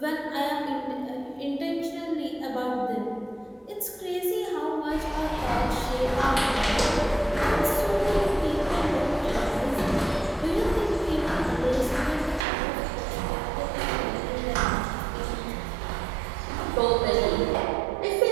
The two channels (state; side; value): drops out; left; at 12.5 s